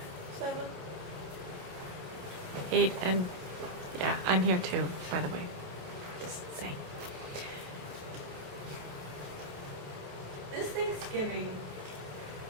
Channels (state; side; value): late; left; 28 ms